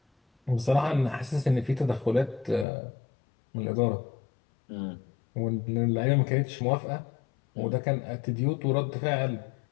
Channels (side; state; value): right; drops out; at 2.7 s